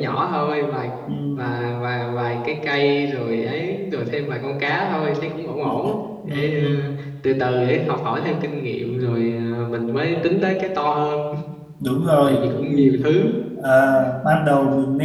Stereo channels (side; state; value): both; identical; correlation 1.00